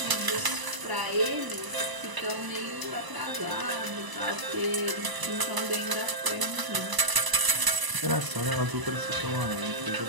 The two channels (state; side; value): late; left; 1.0 ms